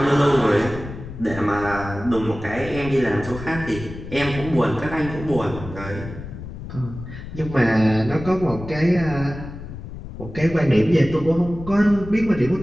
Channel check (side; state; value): left; noise; rumble, 11 dB below the sound